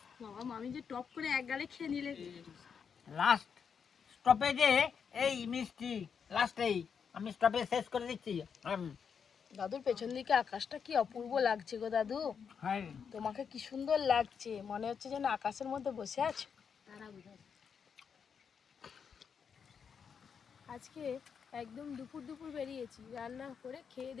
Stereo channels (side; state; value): right; quieter; 6.7 dB